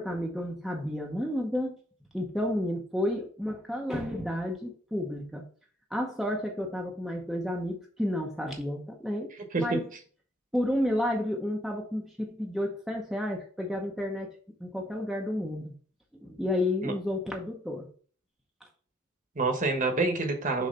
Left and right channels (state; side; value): normal; both; correlation 0.69